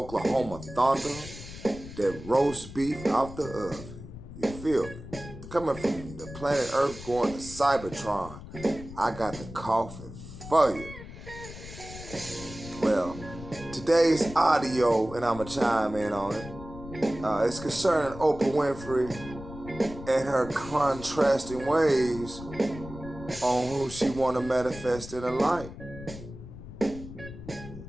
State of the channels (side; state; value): left; noise; rumble, 13 dB below the sound